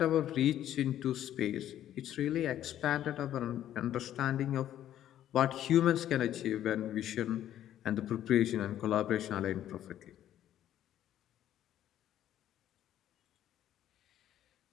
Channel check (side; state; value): right; quieter; 11.7 dB